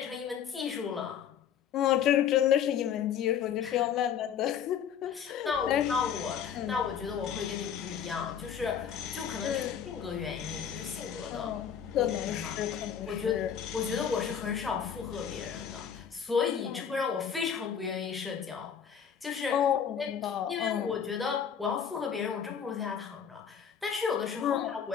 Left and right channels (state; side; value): quieter; right; 8.0 dB